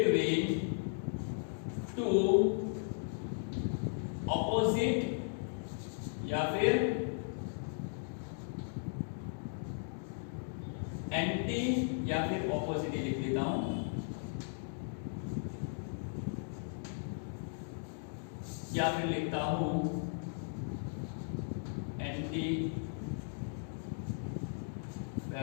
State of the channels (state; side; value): silent; right; digital silence